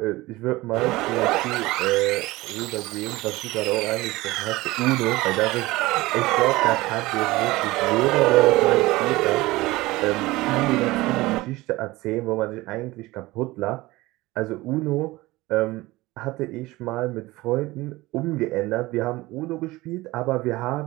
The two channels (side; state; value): left; quieter; 19.8 dB